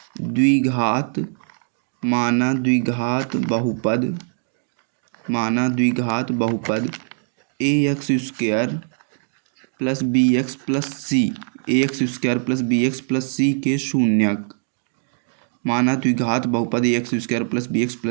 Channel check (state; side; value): silent; left; digital silence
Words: द्विघात बहुपद, माना द्विघात बहुपद a x square plus b x plus c, a x square plus b x plus c के शून्यक। माना द्विघात बहुपद a x square plus b x